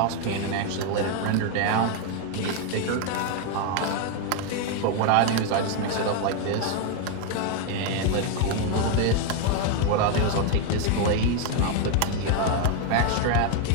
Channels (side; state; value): both; different; correlation 0.01